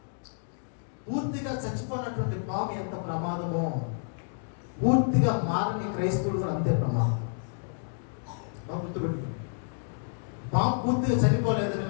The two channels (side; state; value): right; silent; digital silence